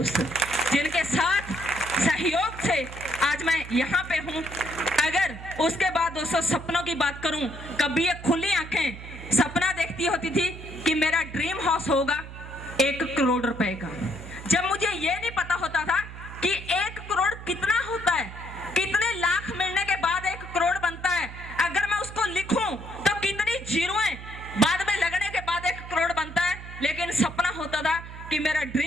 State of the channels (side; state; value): right; noise; hum, 12 dB below the sound